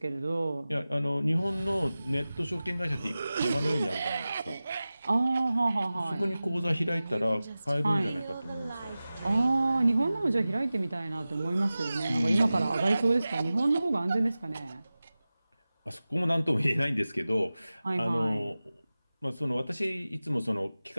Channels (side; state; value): both; inverted; correlation -0.96